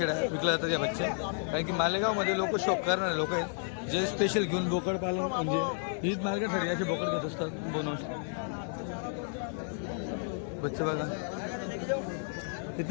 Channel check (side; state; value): right; silent; 56 dB below the other